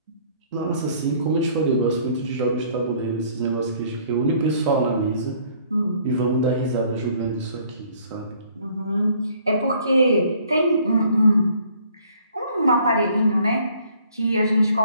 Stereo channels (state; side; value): inverted; both; correlation -0.59